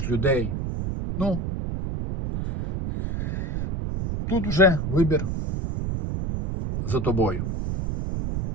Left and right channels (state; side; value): noise; right; rumble, 3 dB below the sound